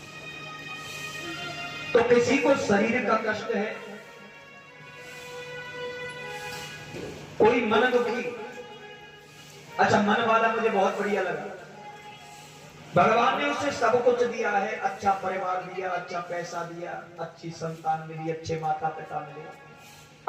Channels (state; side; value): identical; both; correlation 1.00